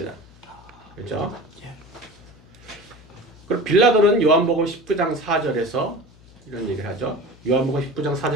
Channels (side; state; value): left; noise; hum, 25 dB below the sound